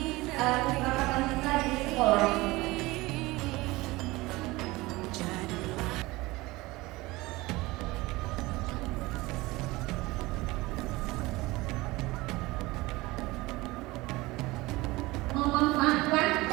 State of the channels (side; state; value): left; quieter; 20.8 dB